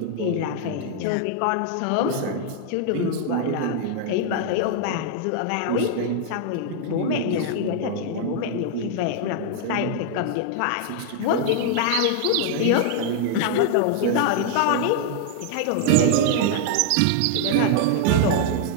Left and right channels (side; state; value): both; different; correlation -0.01